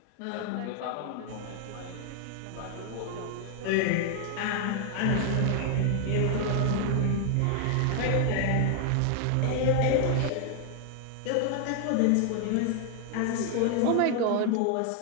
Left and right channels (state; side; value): different; both; correlation 0.00